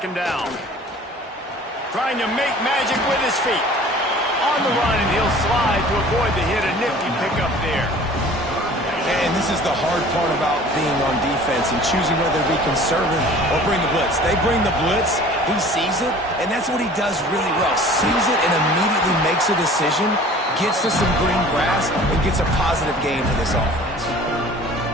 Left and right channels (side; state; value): both; normal; correlation 0.47